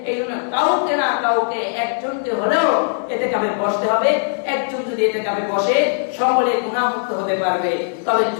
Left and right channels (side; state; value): right; silent; digital silence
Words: এই জন্য কাউকে না কাউকে, একজনকে হলেও ইতিকাফে বসতে হবে। একজন যদি ইতিকাফে বসে, সকলে গুনাহমুক্ত হতে পারবে। তবে